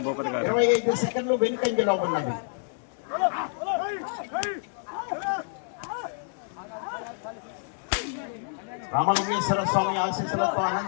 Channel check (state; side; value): silent; right; digital silence